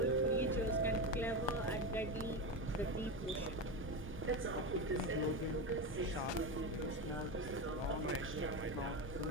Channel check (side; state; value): both; normal; correlation 0.17